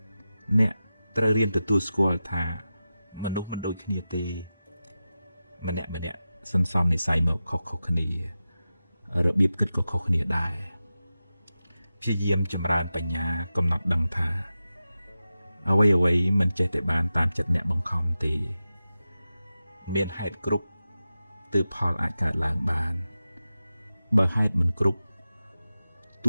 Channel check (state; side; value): inverted; both; correlation -0.93